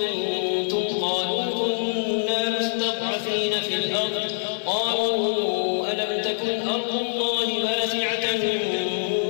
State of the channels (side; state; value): right; silent; digital silence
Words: قالوا كنا مستضعفين في الأرض قالوا ألم تكن أرض الله واسعة